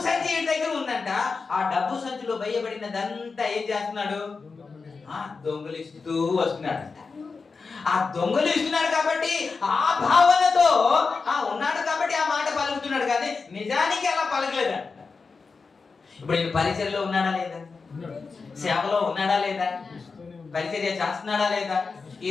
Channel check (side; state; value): right; quieter; 4.6 dB